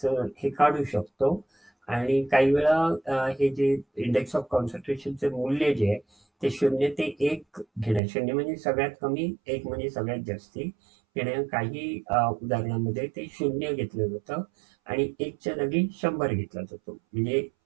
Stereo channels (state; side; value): drops out; left; at 8.0 s